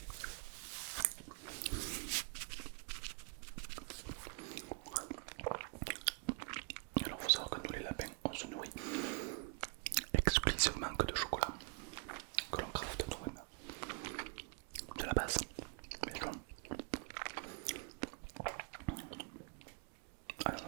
Alors faut savoir que nous les lapins on se nourrit exclusivement que de chocolat que l'on crafte nous-mêmes de la base. Mais non. Ah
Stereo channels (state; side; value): quieter; left; 32.3 dB